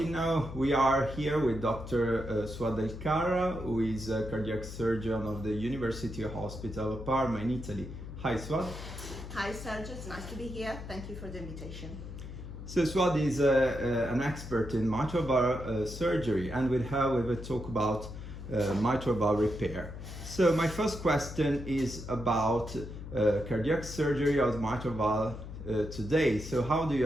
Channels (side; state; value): left; noise; hum, 10 dB below the sound